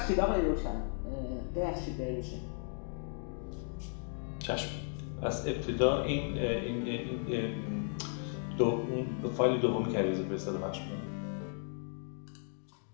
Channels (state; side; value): silent; right; 54 dB below the other